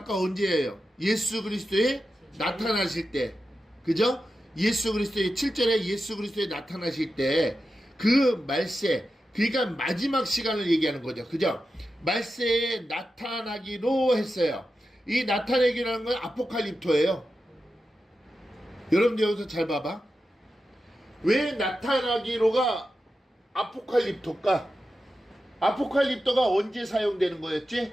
언제예요? 예수 그리스도에 나타나실 때, 그죠? 예수 그리스도의 7절에 예수 그리스도에 나타나실 때 그 말세, 그러니까 마지막 시간을 얘기하는 거죠. 그죠? 말세에 나타나기로 했어요. 이 나타내기라는 건 아포칼립토예요. 여러분들 여기서 잘 봐봐. 왜 나타나기로가 아포칼립토일까? 아포칼립토가 언제 사용되는 거였지?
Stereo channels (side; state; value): both; normal; correlation 0.91